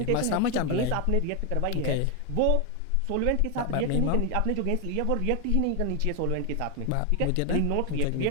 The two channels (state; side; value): different; both; correlation 0.01